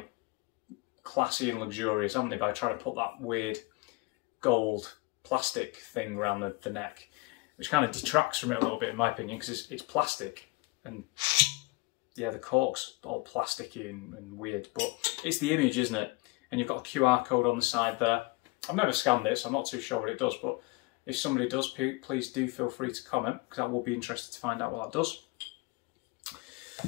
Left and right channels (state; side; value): quieter; right; 24.8 dB